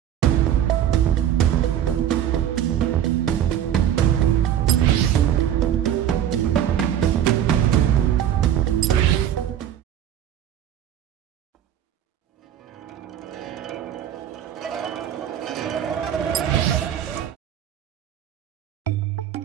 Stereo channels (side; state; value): left; quieter; 10.4 dB